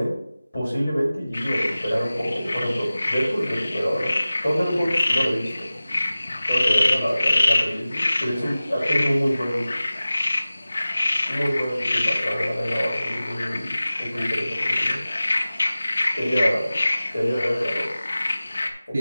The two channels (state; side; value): inverted; both; correlation -0.97